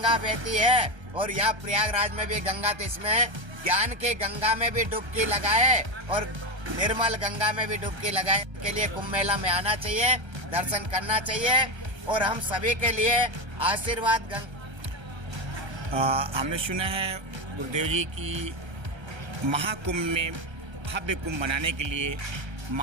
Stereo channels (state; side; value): late; left; 1.3 ms